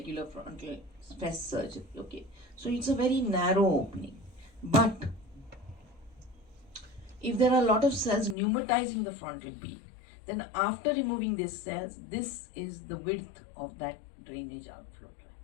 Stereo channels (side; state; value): right; drops out; at 8.3 s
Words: frontal fist surgery. Okay. So it's a very narrow opening. But if there are a lot of cells pneumatizing the frontal beak, then after removing these cells, this is the width of that drainage outflow tract.